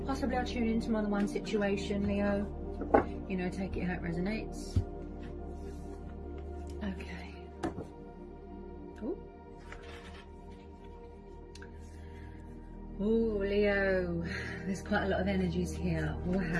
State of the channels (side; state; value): both; identical; correlation 1.00